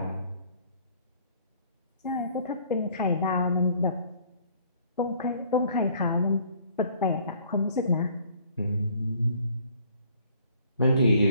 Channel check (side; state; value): both; inverted; correlation -0.58